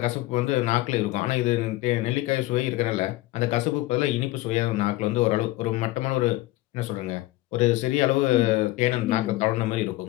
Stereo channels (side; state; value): right; quieter; 17.9 dB